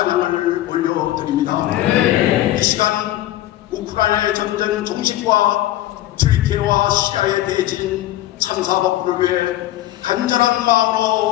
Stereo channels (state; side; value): quieter; right; 14.5 dB